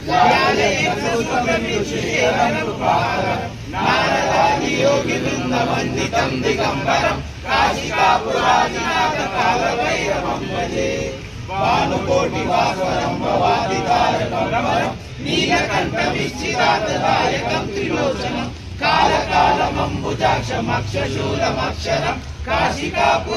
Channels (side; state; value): both; identical; correlation 1.00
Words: दिगम्बरं काशिकापुरादिनाथ कालभैरवं भजे। भानुकोटिभास्वरं भवादितारकं नीलकण्ठविच्छिदातदायकं त्रिलोचनं कालकालमम्बुजाक्षमक्षशूलमक्षरं